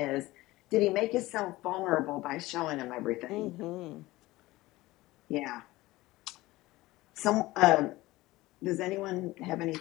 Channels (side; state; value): right; quieter; 18.8 dB